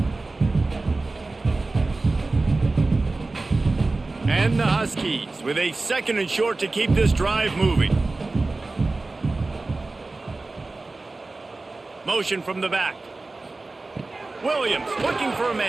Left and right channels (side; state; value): left; quieter; 3.3 dB